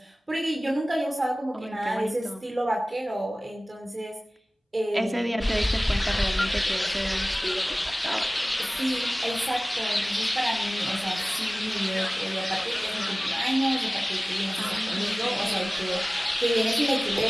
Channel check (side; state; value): both; normal; correlation 0.98